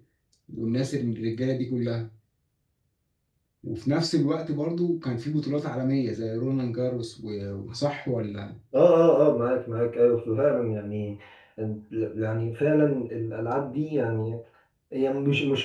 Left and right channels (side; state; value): both; identical; correlation 1.00